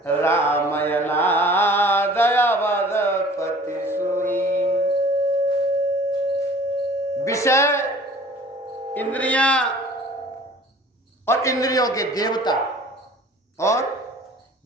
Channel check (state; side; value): normal; both; correlation 0.47